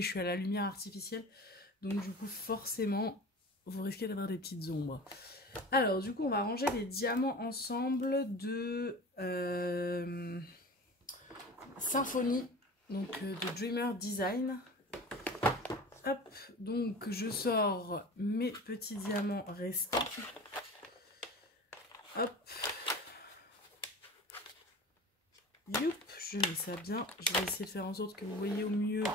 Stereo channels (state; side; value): normal; both; correlation 0.37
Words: je suis à la lumière artificielle. Donc du coup forcément vous risquez d'avoir des petites ombres. Alors du coup on va ranger les diamants ensemble de Symphonie, donc de Dreamer Design. Hop, donc je sors mes petits diamants restants. Hop. Youp, je mets ça bien. Je vais essayer de faire en sorte que vous voyez au mieux.